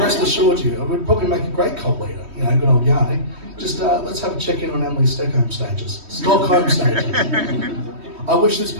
assured you, it would probably make a great cult leader. You know, good old Janek. Just let's have a check-in on Emily's Stockholm stages. I wish this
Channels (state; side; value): late; left; 3.1 ms